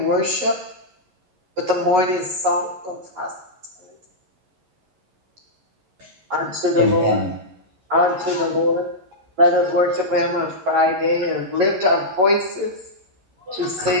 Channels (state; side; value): late; left; 11 ms